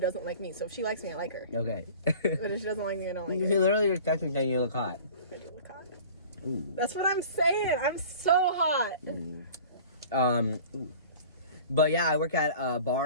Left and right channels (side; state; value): both; inverted; correlation -0.44